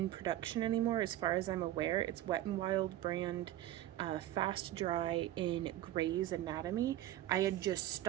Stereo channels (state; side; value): quieter; left; 13.7 dB